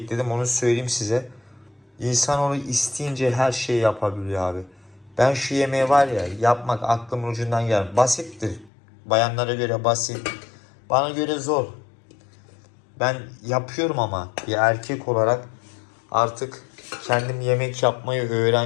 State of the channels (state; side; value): drops out; right; at 8.7 s